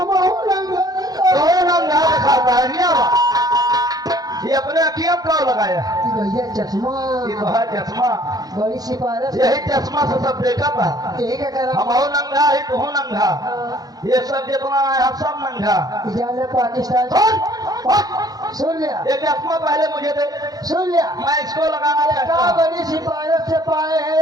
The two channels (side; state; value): left; late; 0.19 ms